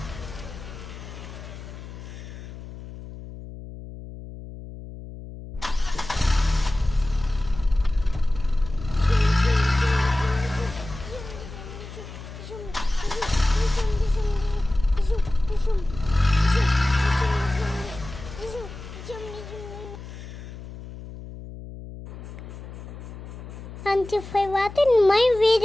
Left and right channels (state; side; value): noise; left; hum, 13 dB below the sound